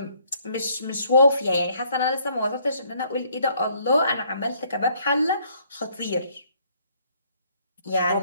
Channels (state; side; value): inverted; both; correlation -0.66